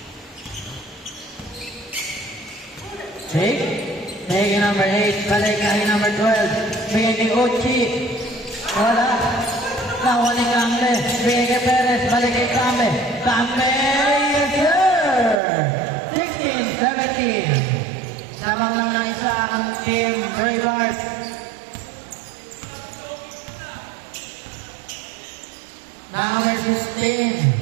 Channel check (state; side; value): drops out; left; at 15.4 s